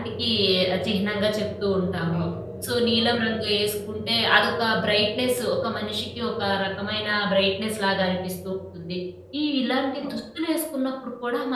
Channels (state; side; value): identical; both; correlation 1.00